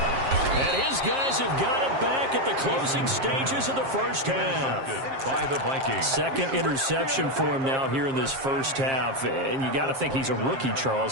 And his guys have got it back at the closing stages of the first half. By the Vikings. Second interception for him now here in this first half. And you got to think he's a rookie, Charles.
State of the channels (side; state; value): left; late; 7.5 ms